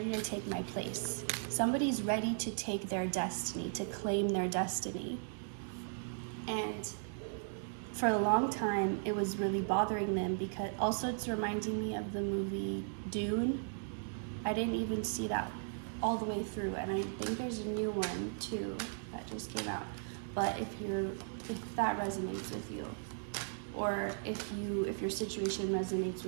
take my place. Somebody's ready to take their destiny, to claim their destiny. And for a long time it was really bothering them, because also it's reminding me of the movie Dune. I didn't even see that all the way through, and I think there's a new one too that just came out. But if that resonates with you, or if your situation resonates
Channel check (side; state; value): left; silent; digital silence